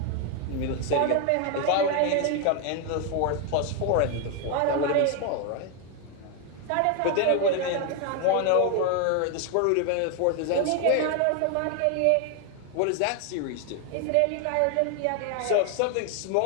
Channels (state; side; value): different; both; correlation 0.01